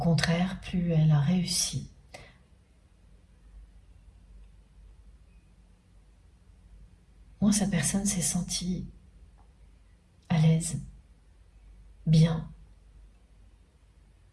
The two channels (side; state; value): both; identical; correlation 1.00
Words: plus elle a réussi, moins cette personne s'est sentie à l'aise, bien.